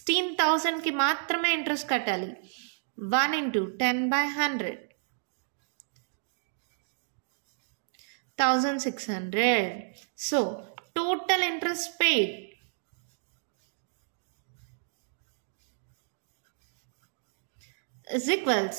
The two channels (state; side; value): silent; left; digital silence